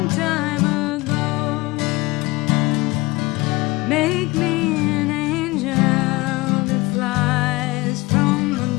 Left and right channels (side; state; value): right; quieter; 22.4 dB